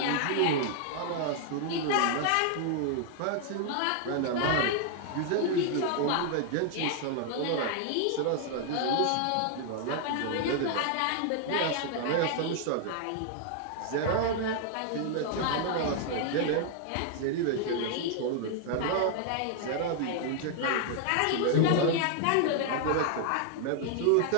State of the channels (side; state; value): both; different; correlation 0.00